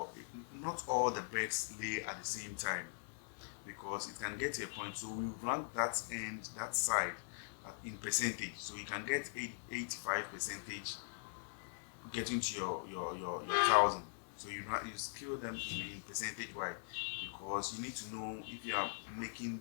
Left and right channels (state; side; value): silent; right; 50 dB below the other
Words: not all the birds lay at the same time, because it can get to a point. So we rank that side in percentage. So you can get 85% getting to your 1,000. So you scale them in percentage wise, because you need to know if you are making